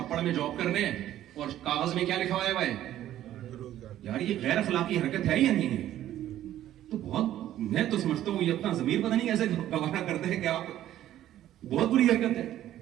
میں جاب کرنے, اور کاغذ میں کیا لکھا ہوا ہے یار یہ غیر اخلاقی حرکت ہے یا نہیں ہے؟ تو بہت, میں تو سمجھتا ہوں یہ اپنا ضمیر پتہ نہیں کیسے گوارا کرتے ہیں کہ آپ, بہت بری حرکت ہے.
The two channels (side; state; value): left; quieter; 12.6 dB